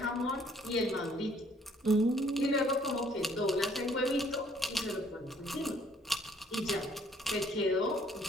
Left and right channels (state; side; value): normal; both; correlation 0.62